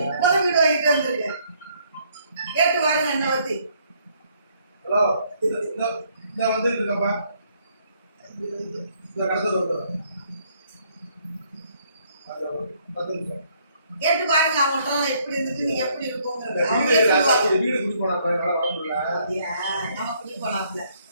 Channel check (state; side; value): inverted; both; correlation -0.67